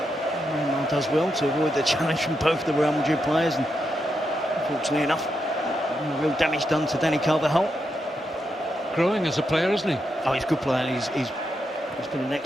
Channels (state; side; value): normal; both; correlation 0.84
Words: Neymar does well to avoid the challenge from both the Real Madrid players, and unfortunately enough, real damage done to Dani Carvajal. Growing as a player, isn't he? Oh, he's a good player. He's been an